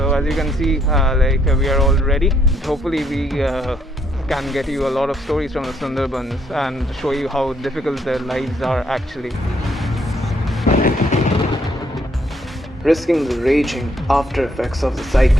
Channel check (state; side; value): normal; both; correlation 0.71